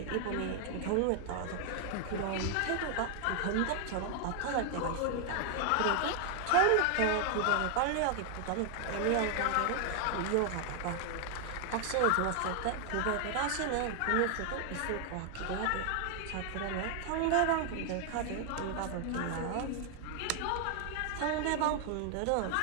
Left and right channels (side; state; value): both; different; correlation 0.00